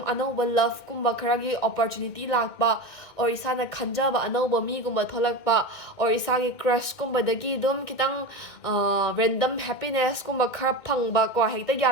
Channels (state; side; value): late; right; 2.2 ms